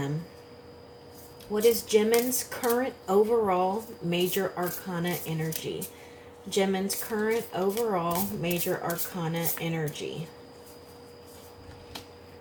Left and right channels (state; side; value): identical; both; correlation 1.00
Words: What is Jimin's current overall major arcana energy? Jimin's current overall major arcana energy.